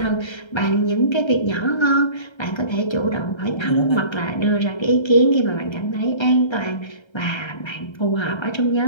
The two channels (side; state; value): right; late; 1.3 ms